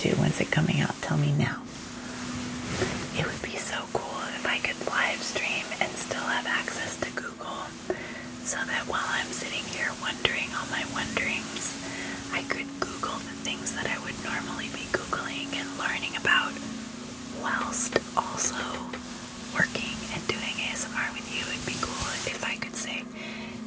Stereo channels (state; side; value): identical; both; correlation 1.00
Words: When's it coming out? Tell me now. It would be so cool if I could live stream and still have access to Google, so that while I'm sitting here one